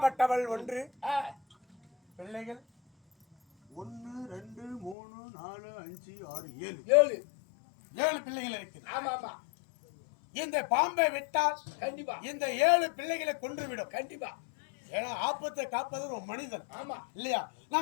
ஒன்று பிள்ளைகள் 1 2 3 4 5 6 7 7 பிள்ளைகள் இருக்கு ஆமா ஆமா இந்த பாம்பை விட்டால் கண்டிப்பா இந்த 7 பிள்ளைகளை கொன்றுவிடும் கண்டிப்பா ஏன்னா ஆபத்தை காப்பது ஒரு மனிதன் ஆமா இல்லையா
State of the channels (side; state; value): right; drops out; at 5.0 s